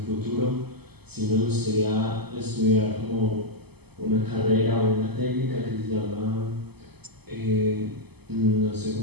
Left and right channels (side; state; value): left; late; 0.97 ms